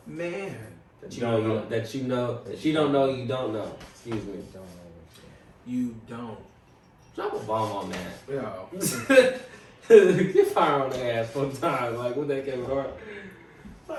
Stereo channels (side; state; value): both; identical; correlation 1.00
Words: Man, That you don't know that you don't know you don't know. Excuse me. you don't. Drop a bomb on that. Yo. Get fire on the ass one time. Like what that Kevin Hart.